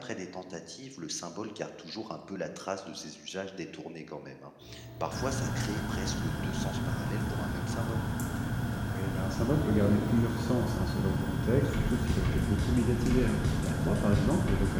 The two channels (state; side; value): identical; both; correlation 1.00